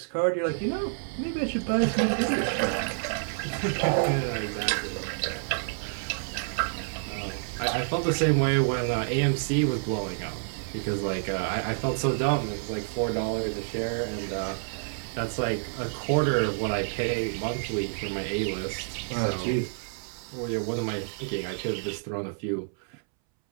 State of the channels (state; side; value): silent; left; 59 dB below the other